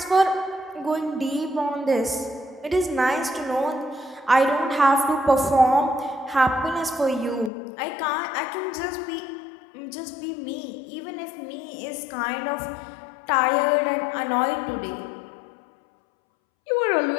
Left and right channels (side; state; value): right; drops out; at 7.5 s